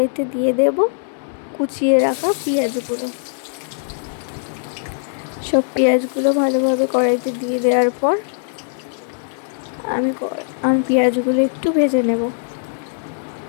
দিয়ে দেব কুচিয়ে রাখা পেঁয়াজগুলো। সব পেঁয়াজগুলো ভালোভাবে কড়াইতে দিয়ে দেওয়ার পর আমি পেঁয়াজগুলো একটু ভেজে নেব।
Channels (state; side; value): silent; right; digital silence